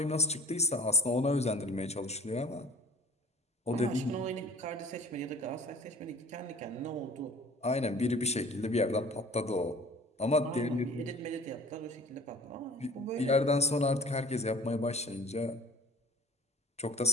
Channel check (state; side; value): normal; both; correlation 0.47